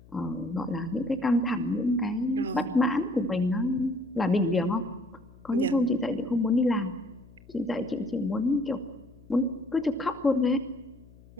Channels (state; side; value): noise; left; hum, 24 dB below the sound